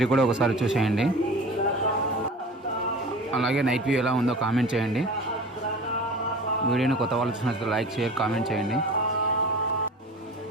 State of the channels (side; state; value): both; normal; correlation 0.38